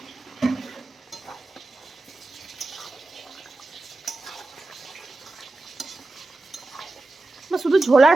শুধু ঝোল আর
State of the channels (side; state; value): left; quieter; 3.1 dB